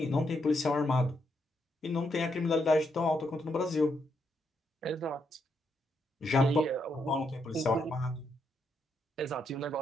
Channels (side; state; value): both; normal; correlation 0.78